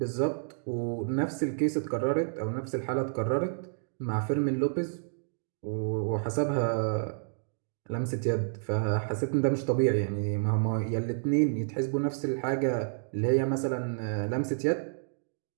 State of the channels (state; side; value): silent; left; digital silence